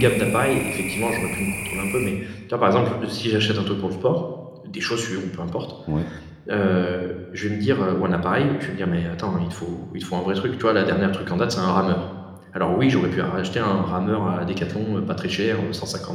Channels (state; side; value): identical; both; correlation 1.00